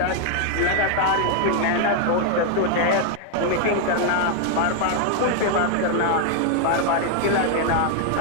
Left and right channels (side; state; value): both; different; correlation 0.00